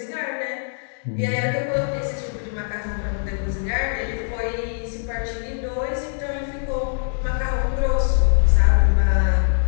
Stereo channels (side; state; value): right; silent; digital silence